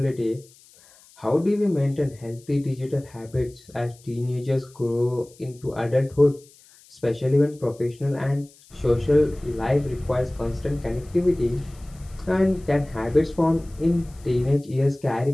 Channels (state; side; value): noise; left; hiss, 26 dB below the sound